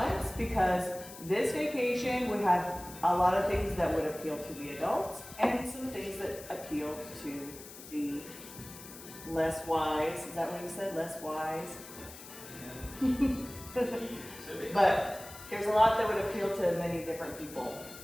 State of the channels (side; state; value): left; noise; hiss, 15 dB below the sound